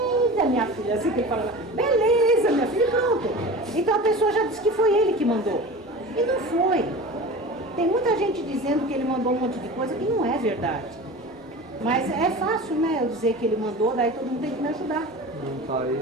minha filha, assim que ele fala, beleza, minha filha, e pronto. Então a pessoa já disse que foi ele que mandou. E não foi. Tem muita gente dizendo que ele mandou um monte de coisa que não é verdade. Mas é fácil, né, eu dizer que ele mandou, daí todo mundo tem que me ajudar. Não tá aí.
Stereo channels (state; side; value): normal; both; correlation 0.35